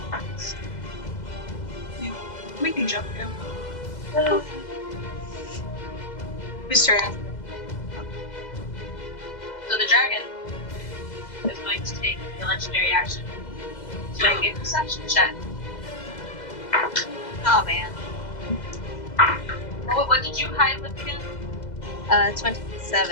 We can jump down. Uh, Whose turn? So the dragon is going to take a legendary action to make a perception check. Oh man. What did you hide with again? 27.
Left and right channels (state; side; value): late; right; 2.0 ms